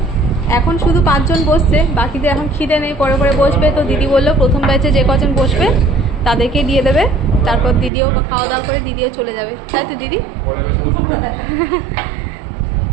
এখন শুধু 5 জন বসছে, বাকিদের এখন খিদে নেই, পরে পরে বসবে। তো দিদি বললো প্রথম ব্যাচে যে কজন বসবে তাদেরকে দিয়ে দেবে, তারপর দিদিও খাওয়া দাওয়া করে দিদিও চলে যাবে, তাই তো দিদি?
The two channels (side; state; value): left; drops out; at 7.9 s